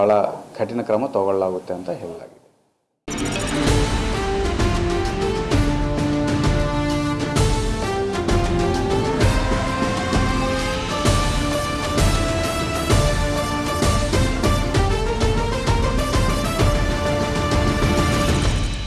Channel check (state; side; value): identical; both; correlation 1.00